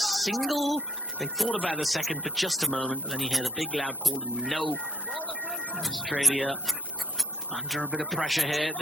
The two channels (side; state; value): both; normal; correlation 0.67